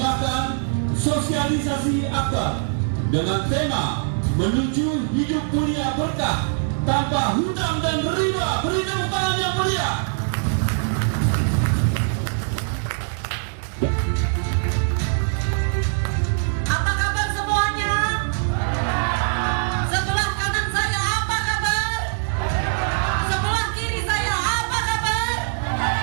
sosialisasi akbar dengan tema menuju hidup mulia berkah tanpa hutang dan riba. Beri tepuk tangan yang meriah. Apa kabar semuanya? Sebelah kanan saya apa kabar? Sebelah kiri saya apa kabar?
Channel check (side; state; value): left; silent; 60 dB below the other